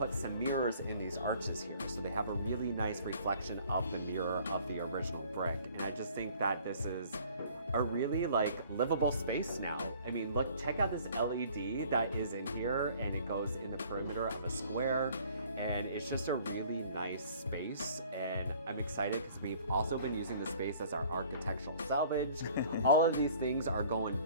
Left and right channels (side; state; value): both; inverted; correlation -0.53